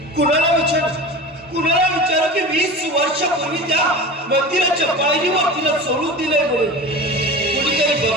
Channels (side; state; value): both; normal; correlation 0.31